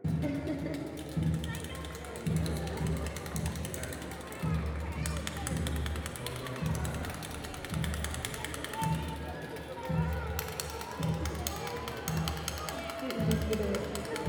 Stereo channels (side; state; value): both; identical; correlation 1.00